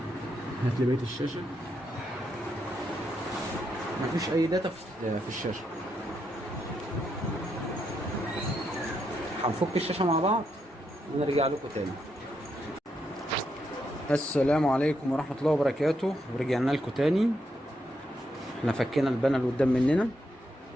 هات لي بقية الشاشة. مفيش أي داتا في الشاشة. هنفك الشاشة مع بعض ونرجع لكم تاني. السلام عليكم ورحمة الله وبركاته، ورجعنا لكم تاني. احنا فكينا البانل قدام مننا،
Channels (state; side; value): normal; both; correlation 0.80